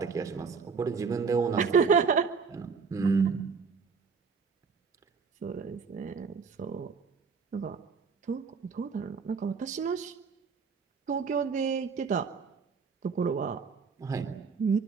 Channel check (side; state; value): left; quieter; 5.5 dB